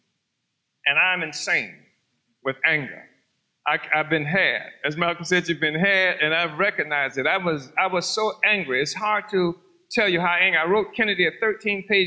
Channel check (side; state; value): both; identical; correlation 1.00